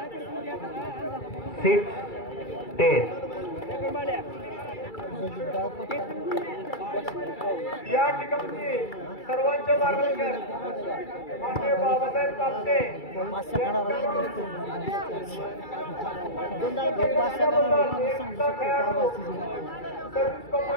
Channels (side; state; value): right; late; 2.3 ms